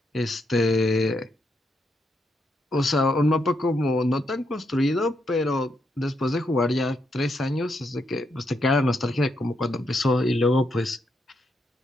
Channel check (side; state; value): both; normal; correlation 0.79